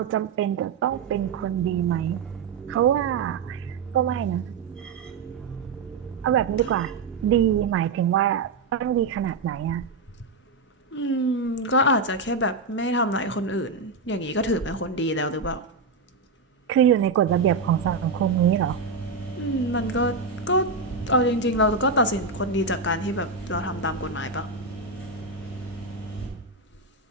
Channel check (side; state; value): left; quieter; 4.3 dB